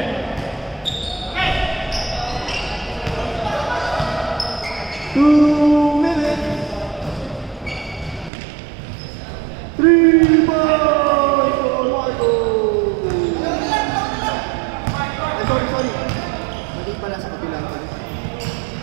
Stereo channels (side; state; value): left; drops out; at 8.3 s